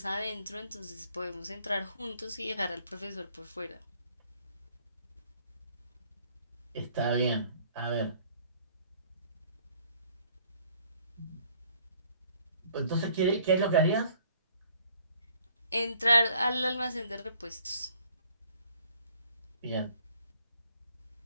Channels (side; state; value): both; inverted; correlation -0.60